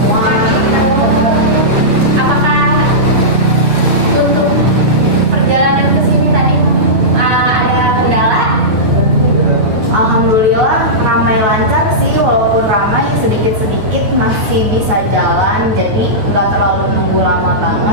Apakah untuk perjalanan ke sini tadi ada kendala? Alhamdulillah ramai lancar sih, walaupun ramai sedikit-sedikit masih bisa jalan, jadi nggak terlalu nunggu lama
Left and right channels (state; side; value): late; left; 9.2 ms